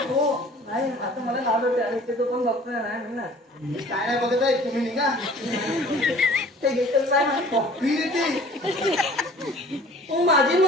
हो नाही आता मला नाव होते आणि इथे तो पण डॉक्टर नाही मी ना मी काय नाही बघत आहे तुम्ही निघा ते घेतच नाही कॉफी देते हो माझी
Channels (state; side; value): normal; both; correlation 0.49